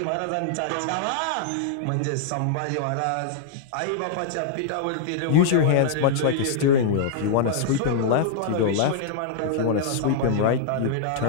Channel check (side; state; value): both; different; correlation -0.01